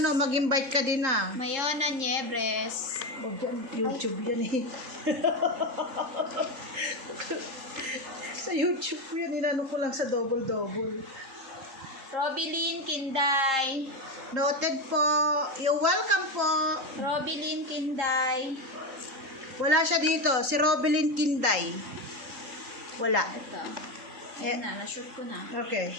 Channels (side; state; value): left; late; 3.8 ms